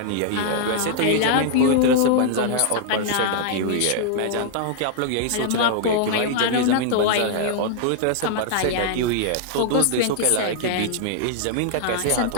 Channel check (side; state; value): both; different; correlation -0.01